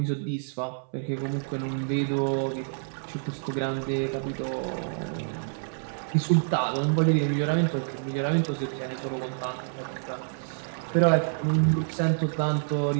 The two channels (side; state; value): left; silent; 60 dB below the other